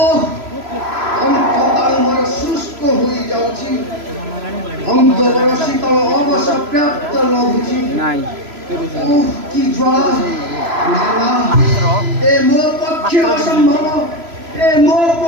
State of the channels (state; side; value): late; left; 3.0 ms